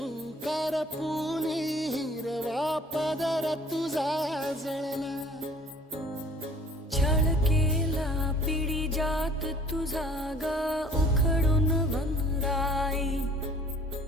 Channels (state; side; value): normal; both; correlation 0.52